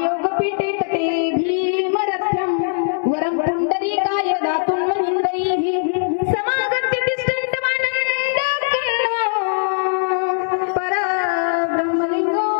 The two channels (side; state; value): right; silent; digital silence